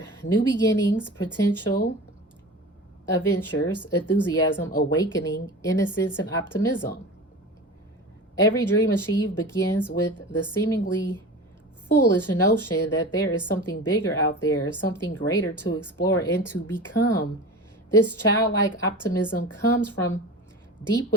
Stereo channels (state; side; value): normal; both; correlation 0.33